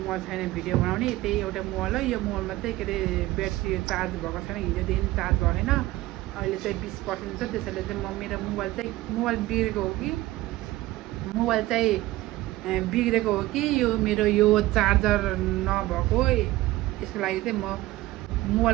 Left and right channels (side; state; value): left; quieter; 17.4 dB